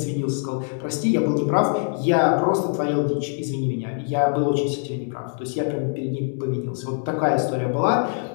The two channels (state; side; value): silent; right; 56 dB below the other